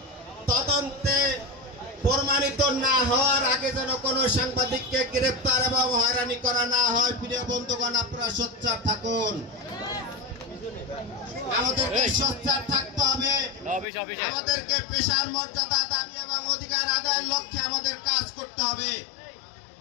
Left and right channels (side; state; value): right; drops out; at 13.9 s